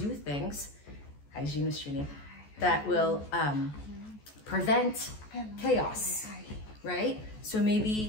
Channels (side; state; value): right; late; 14 ms